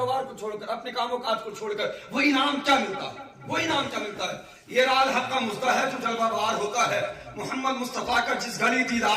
کو چھوڑ کر، اپنے کام و کاج کو چھوڑ کر، وہ انعام کیا ملتا ہے؟ وہ انعام کیا ملتا ہے؟ یہ رال حق کا مزدہ ہے جو جلوہ بار ہوتا ہے، محمد مصطفیٰ کا جس گھڑی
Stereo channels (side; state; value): both; identical; correlation 1.00